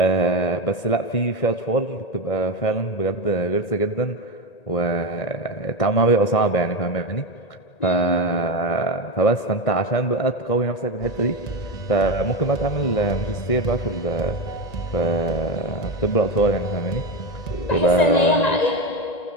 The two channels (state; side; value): late; right; 1.8 ms